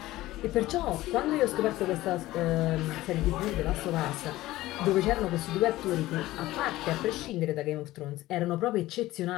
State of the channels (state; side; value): quieter; right; 16.8 dB